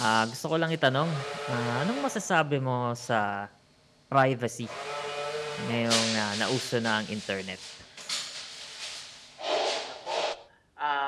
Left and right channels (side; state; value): both; identical; correlation 1.00